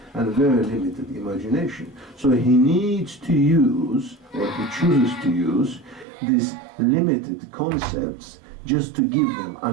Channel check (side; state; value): left; drops out; at 6.1 s